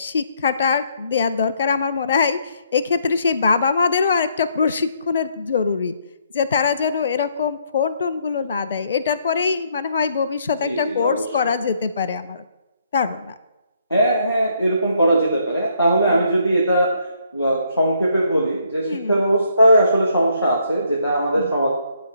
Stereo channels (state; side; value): inverted; both; correlation -0.71